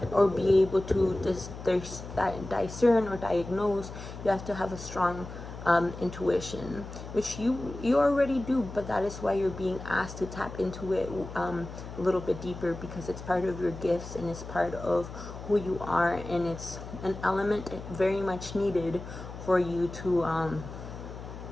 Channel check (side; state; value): left; noise; hum, 11 dB below the sound